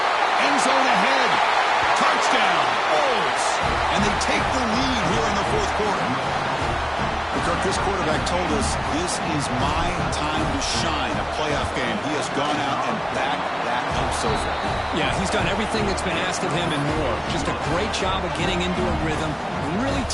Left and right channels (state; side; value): identical; both; correlation 1.00